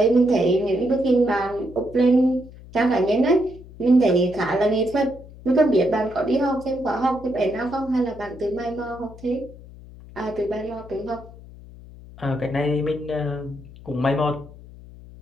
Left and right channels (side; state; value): left; noise; hum, 19 dB below the sound